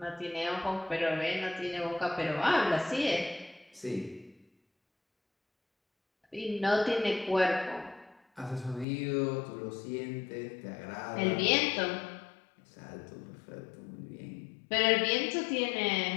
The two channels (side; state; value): right; drops out; at 8.8 s